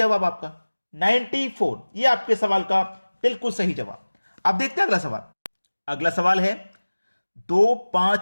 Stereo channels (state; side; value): inverted; both; correlation -1.00